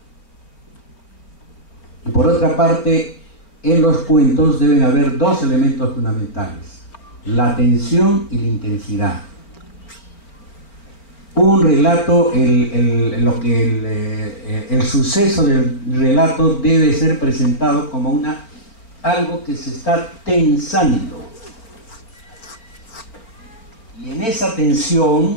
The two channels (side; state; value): right; late; 4.4 ms